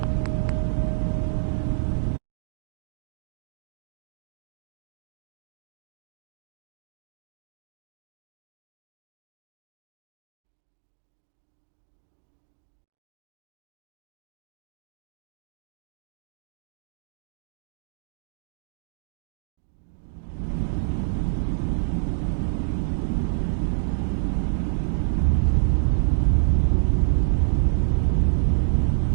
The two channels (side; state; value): left; silent; digital silence